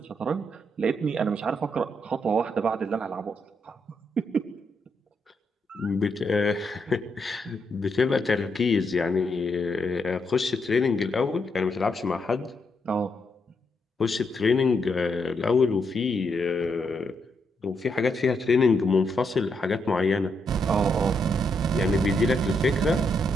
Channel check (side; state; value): both; normal; correlation 0.79